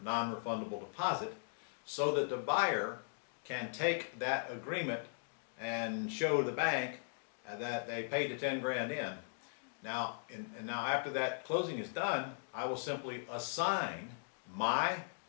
non-refundable deposit so that the buyer can take that agreement and show the bank that they paid the 10 grand in. Now, now after that closing is done, I will simply assign my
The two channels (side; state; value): right; silent; digital silence